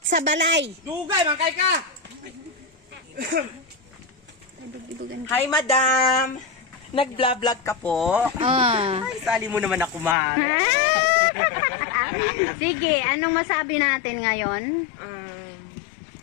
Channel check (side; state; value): right; drops out; at 10.2 s